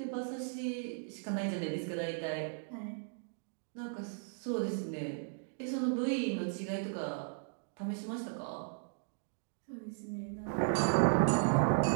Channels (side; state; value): left; silent; digital silence